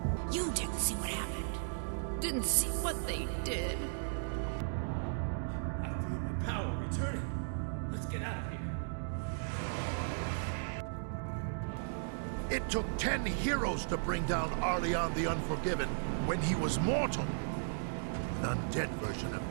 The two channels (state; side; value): silent; left; digital silence